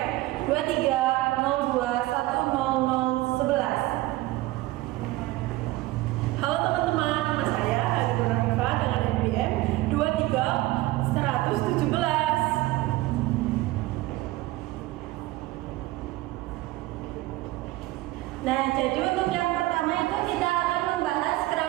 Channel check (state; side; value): quieter; left; 18.4 dB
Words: 2302100011. Halo teman-teman, nama saya Ega Nurhanifa dengan NPM 23117. Nah, jadi untuk yang pertama itu kita akan membahas